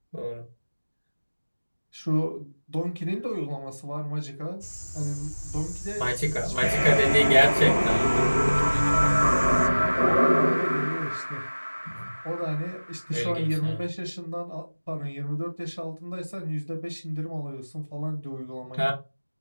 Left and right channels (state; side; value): inverted; both; correlation -1.00